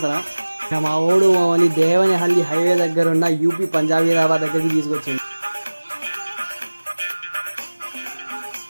ఇక మా ఓడు మమ్మల్ని దేవనహల్లి హైవే దగ్గర ఉన్న యూపీ పంజాబీరాబాద్ దగ్గరికి తీసుకొచ్చింది.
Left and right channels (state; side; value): inverted; both; correlation -1.00